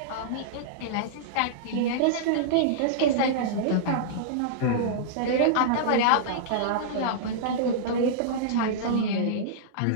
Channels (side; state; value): both; different; correlation -0.02